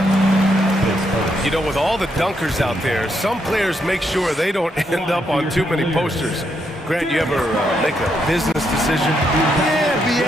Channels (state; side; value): normal; both; correlation 0.78